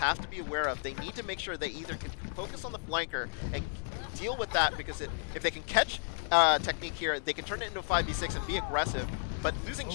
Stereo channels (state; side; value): silent; right; 56 dB below the other